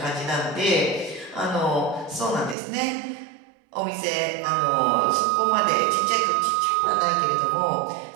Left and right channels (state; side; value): drops out; left; at 2.6 s